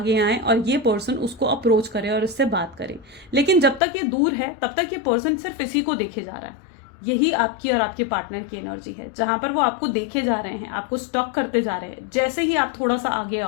आए और ये पर्सन उसको अप्रोच करे और इससे बात करे। लेकिन जब तक ये दूर है तब तक ये पर्सन सिर्फ इसी को देखे जा रहा है। यही आपकी और आपके पार्टनर की एनर्जी है, जहां पर वो आपको देखे जा रहे हैं, आपको स्टॉक करते जा रहे हैं। जैसे ही आप थोड़ा सा आगे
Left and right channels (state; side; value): drops out; right; at 3.8 s